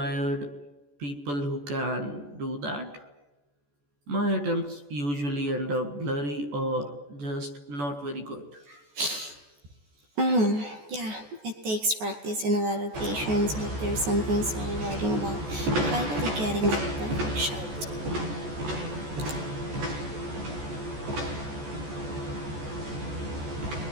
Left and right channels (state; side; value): late; left; 14 ms